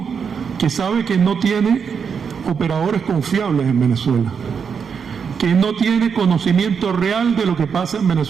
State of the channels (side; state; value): left; quieter; 6.5 dB